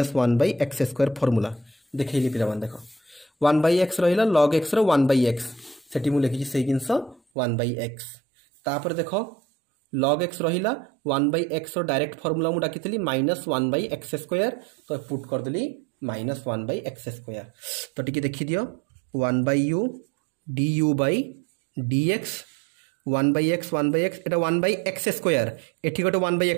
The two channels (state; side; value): drops out; left; at 7.2 s